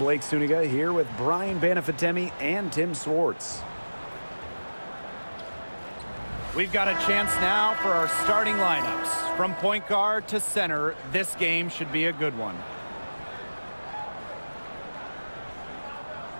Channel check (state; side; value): inverted; both; correlation -1.00